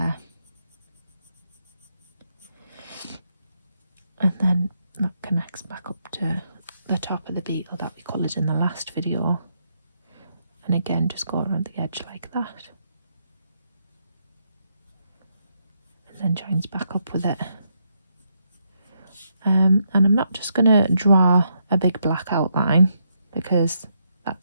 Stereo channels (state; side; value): inverted; both; correlation -0.78